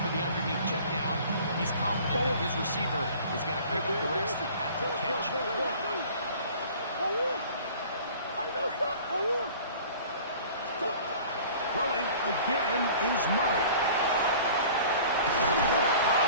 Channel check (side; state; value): both; inverted; correlation -0.46